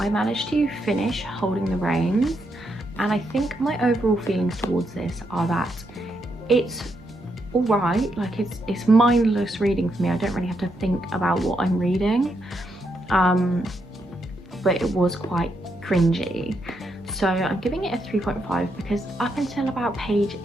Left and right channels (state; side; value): normal; both; correlation 0.80